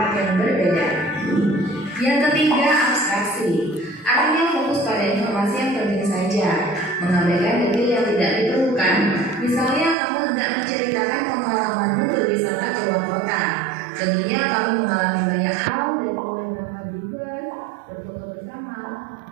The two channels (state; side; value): drops out; left; at 10.0 s